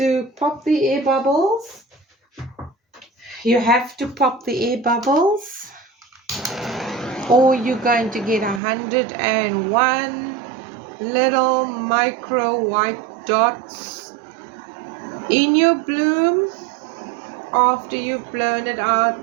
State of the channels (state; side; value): drops out; left; at 8.6 s